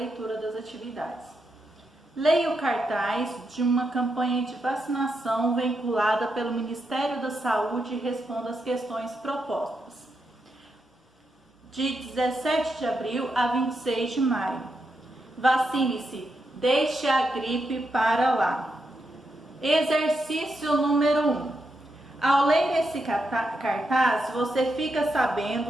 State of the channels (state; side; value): normal; both; correlation 0.83